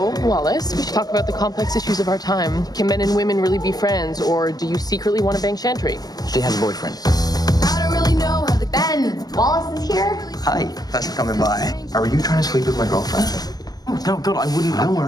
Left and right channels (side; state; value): right; late; 0.19 ms